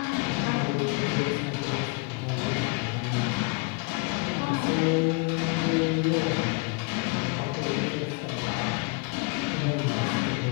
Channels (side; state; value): right; quieter; 29.7 dB